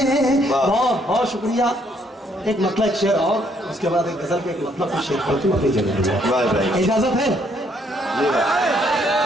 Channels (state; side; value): normal; both; correlation 0.69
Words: वाह। बहुत बहुत शुक्रिया। एक मतलब एक शेर और उसके बाद एक गजल के एक मतलब का शेर पढ़ती हूँ अपनी जगह। वाह भाई, इजाजत है? जी भाई,